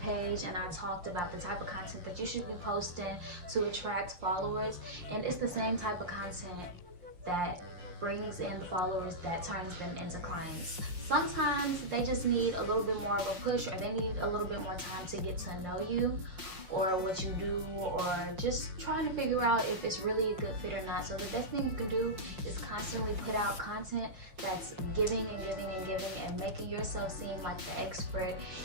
and I talked about the type of content that you should be posting to attract followers, and it's the same type of content that brings in the followers that turns them into clients. Sometimes they just need a little bit more of a push, or they need a little bit more time to get to know you or what you do, or just trying to figure out if it's really a good fit or not. So the best thing you can do is constantly put out content that's giving and giving and giving, and making yourself seem like the expert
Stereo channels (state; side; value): late; left; 5.6 ms